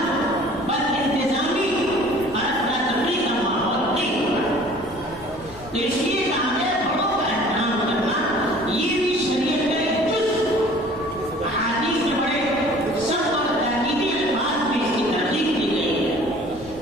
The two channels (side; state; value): left; noise; rumble, 19 dB below the sound